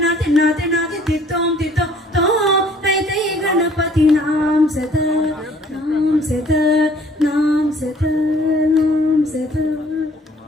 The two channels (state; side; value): normal; both; correlation 0.57